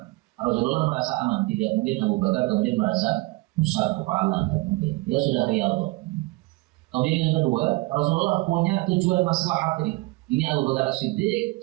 Rasulullah merasa aman, tidak mungkin Abu Bakar kemudian merasa besar kepala, tidak mungkin. Dia sudah riyadhah. Kemudian yang kedua, Rasulullah punya tujuan maslahat ini. Ini Abu Bakar As-Siddiq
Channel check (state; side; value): quieter; left; 22.7 dB